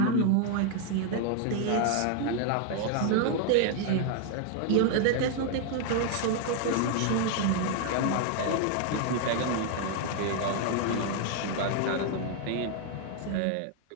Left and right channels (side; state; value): both; different; correlation 0.00